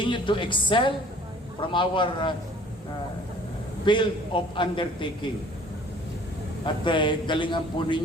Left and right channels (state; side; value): normal; both; correlation 0.53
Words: to excel from our field of undertaking. At galingan po